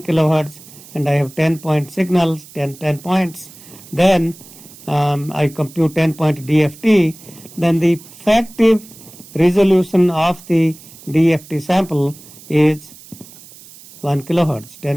kilohertz and I have 10-point signals, 10 points, then I compute 10-point DFT, then the effective resolution of the DFT sample is 1 kilohertz,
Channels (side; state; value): right; noise; hiss, 20 dB below the sound